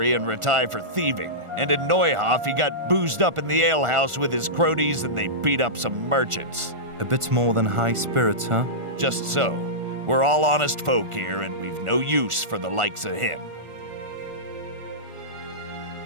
and retired for thieving, and in Neuhof he got boozed up in the alehouse with his cronies and they beat up some merchants. A bit more than high spirits, huh? Just so. We're all honest folk here, and we've no use for the likes of him.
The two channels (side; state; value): left; late; 1.4 ms